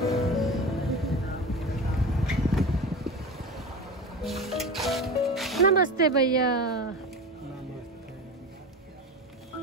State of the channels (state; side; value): normal; both; correlation 0.28